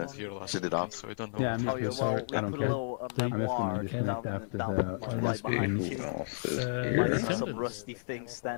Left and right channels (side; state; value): right; silent; digital silence